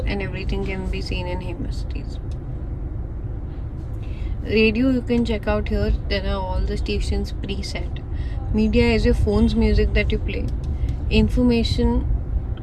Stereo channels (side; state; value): both; identical; correlation 1.00